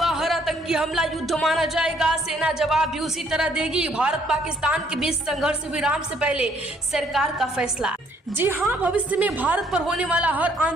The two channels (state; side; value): normal; both; correlation 0.65